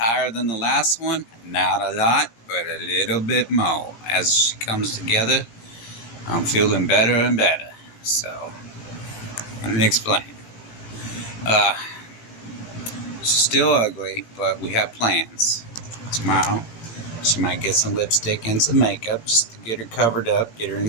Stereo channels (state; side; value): late; right; 17 ms